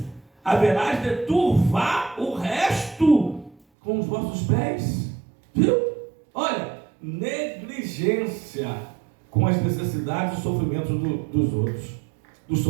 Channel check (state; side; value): drops out; left; at 3.6 s